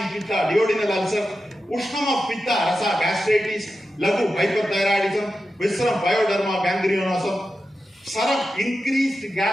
in Pitta, duodenal ulcer, Ushnam of Pitta, Rasa, gastritis, Lagu, hyperthyroidism, Visceram, pyoderma, gangrenosom, Saram, increased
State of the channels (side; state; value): both; normal; correlation 0.91